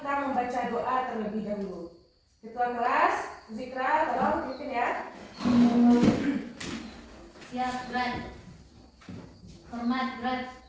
membaca doa terlebih dahulu. Ketua kelas, Zikra, tolong pimpin ya. Siap, berat. Hormat, berat.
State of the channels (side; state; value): both; identical; correlation 1.00